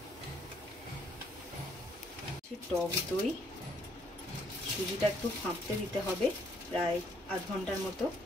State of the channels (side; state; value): both; normal; correlation 0.68